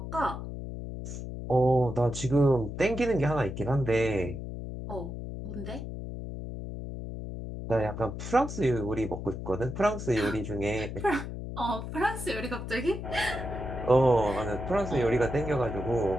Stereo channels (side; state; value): left; noise; hum, 7 dB below the sound